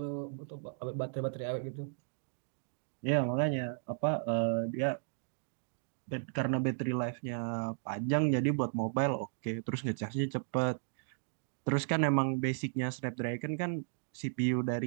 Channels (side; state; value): left; silent; digital silence